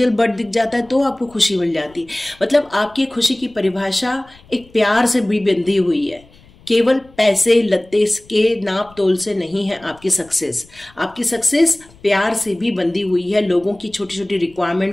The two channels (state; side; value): noise; left; rumble, 26 dB below the sound